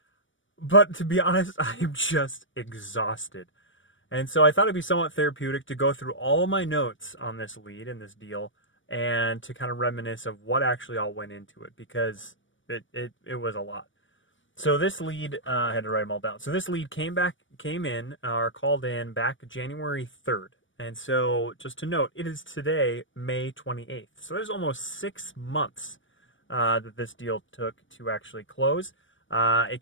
But to be honest, I'm just exhausted. And so I thought it'd be somewhat therapeutic to go through all my notes on this lead and this deal and to kind of reminisce of what actually all went into it because it was a lot. So this lead, I had to write them all down. So this lead came in, or called in back January 3rd. And so just to note, it is today, May 28th. So there's almost 6 months that this deal took to actually close. It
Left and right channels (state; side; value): late; right; 0.56 ms